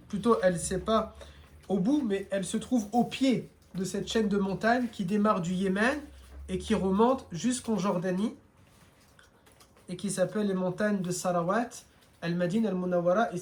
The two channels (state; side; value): identical; both; correlation 1.00